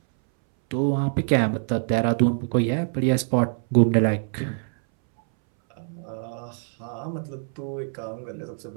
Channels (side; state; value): left; silent; 62 dB below the other